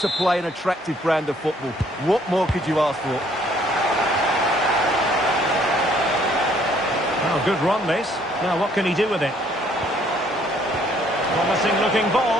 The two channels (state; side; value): normal; both; correlation 0.63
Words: play an attractive brand of football. What more could you ask for? Oh, good run this. Now what can he do with it? Promising looking